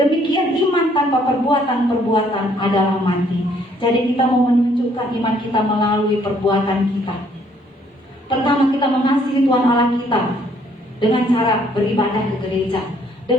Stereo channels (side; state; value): both; normal; correlation 0.65